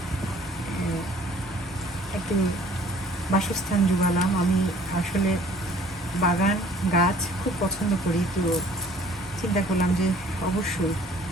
একটু বাসস্থান জোগালাম। আমি আসলে বাগান গাছ খুব পছন্দ করি, তো চিন্তা করলাম যে অবশ্যই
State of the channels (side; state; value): both; normal; correlation 0.54